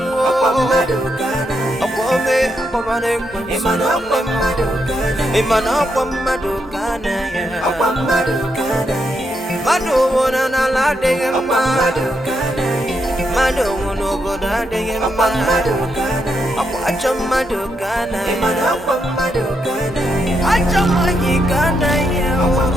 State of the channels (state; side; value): normal; both; correlation 0.81